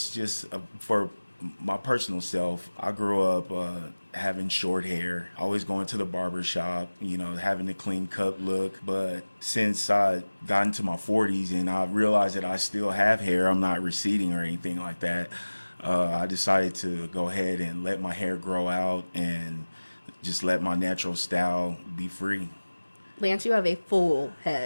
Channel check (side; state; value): both; inverted; correlation -1.00